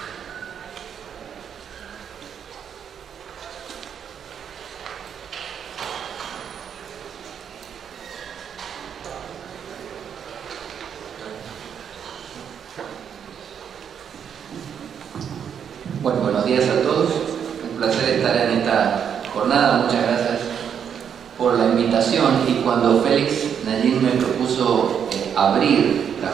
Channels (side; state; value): left; quieter; 8.0 dB